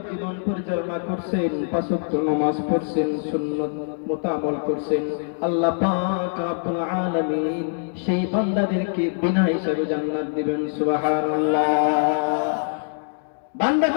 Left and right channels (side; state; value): right; silent; digital silence